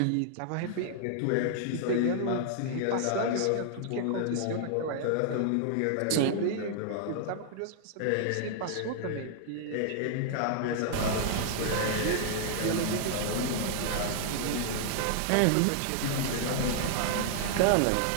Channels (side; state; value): both; different; correlation -0.01